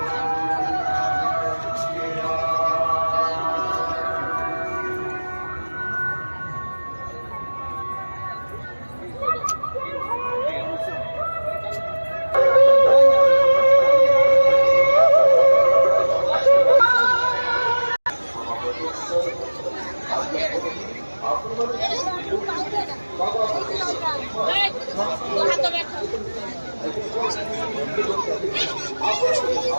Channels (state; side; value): inverted; both; correlation -1.00